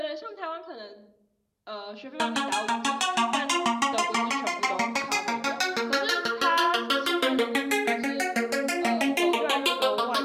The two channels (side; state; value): both; identical; correlation 1.00